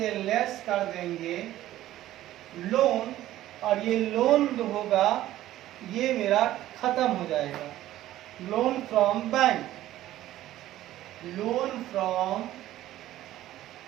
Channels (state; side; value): quieter; left; 14.2 dB